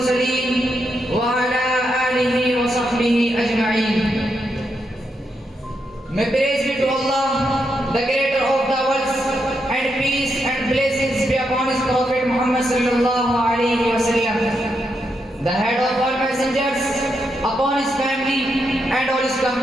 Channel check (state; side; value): normal; both; correlation 0.82